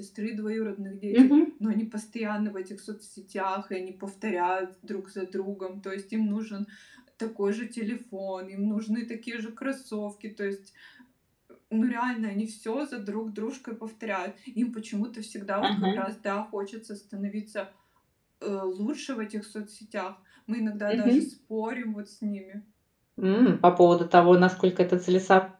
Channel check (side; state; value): both; identical; correlation 1.00